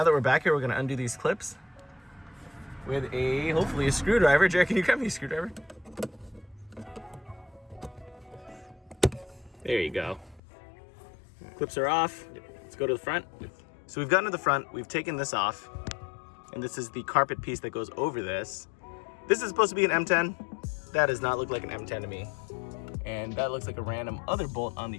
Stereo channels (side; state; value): right; drops out; at 10.4 s